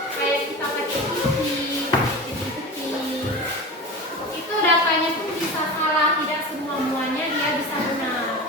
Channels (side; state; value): both; normal; correlation 0.30